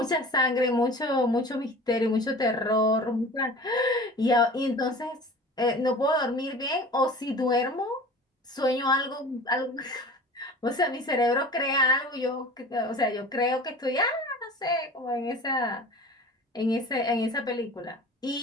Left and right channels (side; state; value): both; normal; correlation 0.40